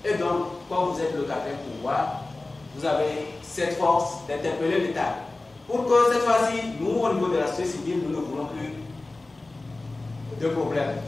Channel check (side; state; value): right; quieter; 3.1 dB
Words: Et donc, quand vous êtes le quatrième pouvoir, vous avez cette force d'interpeller l'État. Pour que cette fois-ci, nous, au niveau de la société civile, nous ne voulons plus de problèmes.